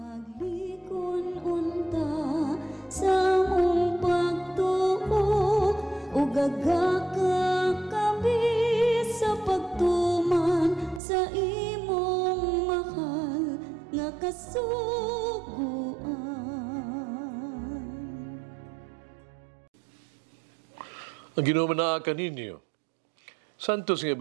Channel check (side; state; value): left; drops out; at 11.0 s